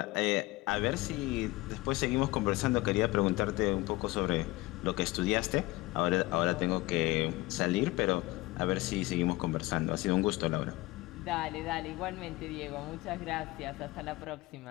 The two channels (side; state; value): right; quieter; 20.3 dB